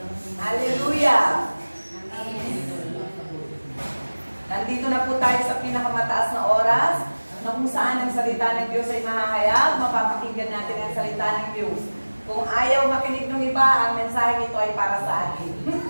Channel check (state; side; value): inverted; both; correlation -1.00